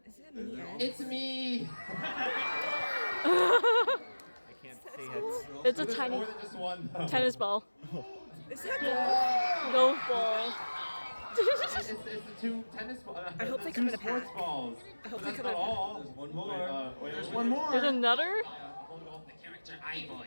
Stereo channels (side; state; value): both; inverted; correlation -1.00